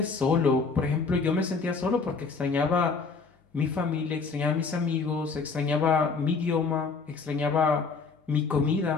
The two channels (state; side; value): quieter; right; 4.6 dB